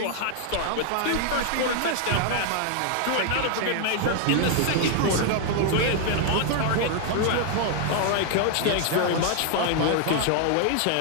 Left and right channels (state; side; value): different; both; correlation 0.00